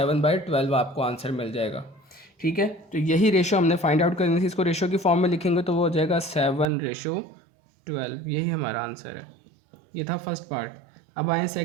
आपको आंसर मिल जाएगा। ठीक है, तो यही रेशो हमने फाइंड आउट करनी थी। इसको रेशो की फॉर्म में लिखेंगे तो वो हो जाएगा 7/12। यही हमारा आंसर है। ये था फर्स्ट पार्ट। अब आए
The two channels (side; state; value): left; drops out; at 6.7 s